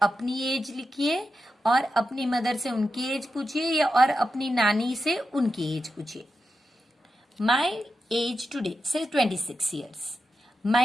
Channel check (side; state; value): both; normal; correlation 0.89